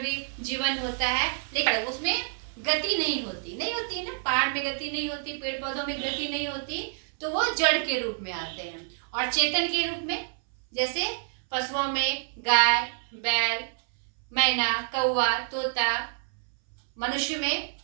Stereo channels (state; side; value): silent; left; 59 dB below the other